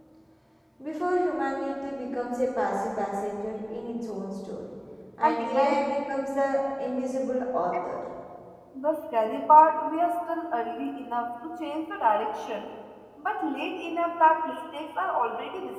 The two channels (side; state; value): both; identical; correlation 1.00